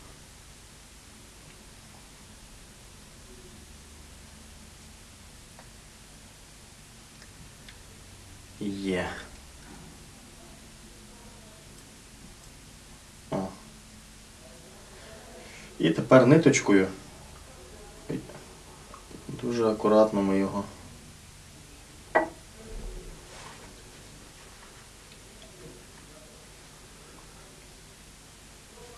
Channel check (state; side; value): identical; both; correlation 1.00